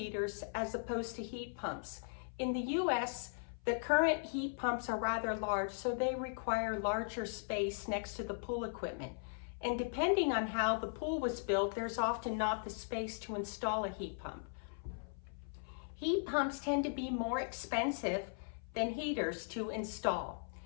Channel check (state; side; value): silent; right; 52 dB below the other